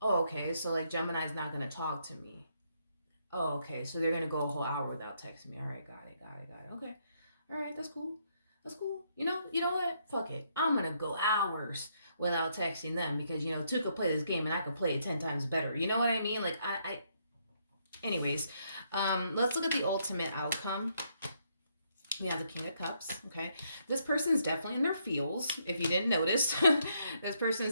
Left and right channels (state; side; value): inverted; both; correlation -0.74